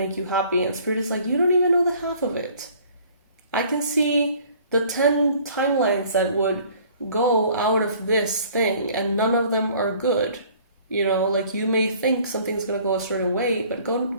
you happy, and Spirit is like, you don't even know the half of it. I can see the 10 timelines that would go out of this thing, and none of them are good. You may think something's going to go a certain way, but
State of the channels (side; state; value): both; inverted; correlation -0.54